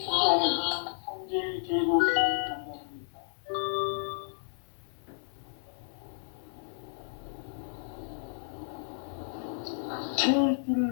상제의 대도시를 만나는 데 있다. 태일주를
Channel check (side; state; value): right; silent; digital silence